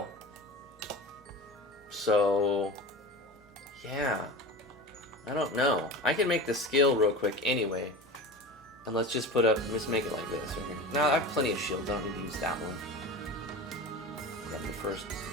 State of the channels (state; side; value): normal; both; correlation 0.31